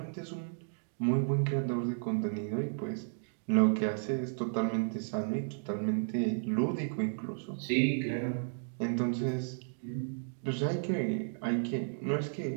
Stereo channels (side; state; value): left; silent; digital silence